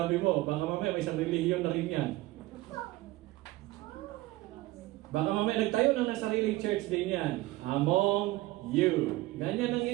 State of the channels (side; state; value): left; quieter; 18.7 dB